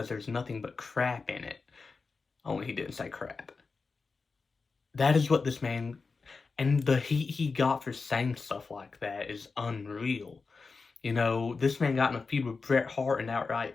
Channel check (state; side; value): quieter; right; 4.5 dB